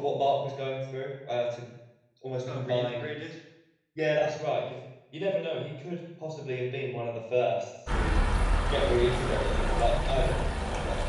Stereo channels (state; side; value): identical; both; correlation 1.00